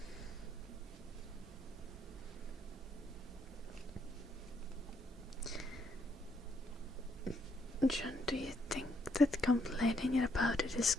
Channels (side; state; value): both; normal; correlation 0.73